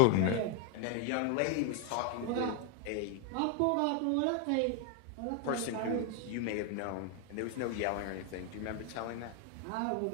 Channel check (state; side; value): different; both; correlation 0.00